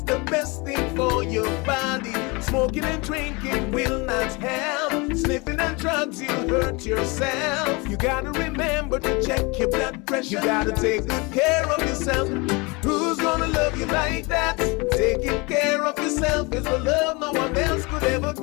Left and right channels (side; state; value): right; quieter; 27.0 dB